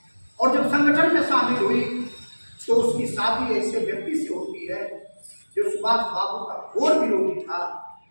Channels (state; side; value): inverted; both; correlation -1.00